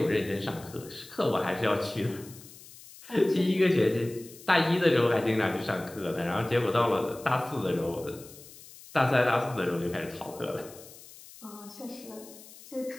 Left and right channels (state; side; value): noise; left; hiss, 19 dB below the sound